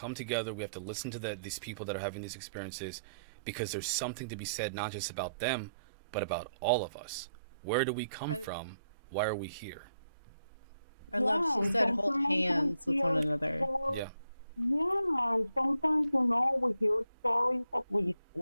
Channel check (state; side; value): inverted; both; correlation -0.77